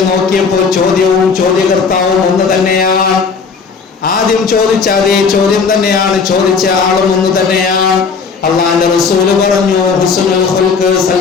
നോക്കിയപ്പോൾ ചോദ്യവും ചോദ്യകർത്താവും ഒന്ന് തന്നെയാണ്. ആദ്യം ചോദിച്ച അതേ ചോദ്യം തന്നെയാണ്, ചോദിച്ച ആളും ഒന്ന് തന്നെയാണ്. അല്ലാഹുവിന്റെ റസൂൽ പറഞ്ഞു, ഹുസ്നുൽ ഖുൽഖ്,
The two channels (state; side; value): quieter; right; 5.3 dB